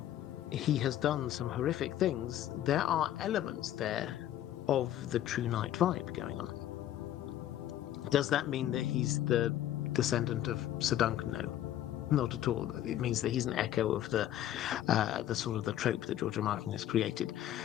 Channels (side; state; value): right; quieter; 12.2 dB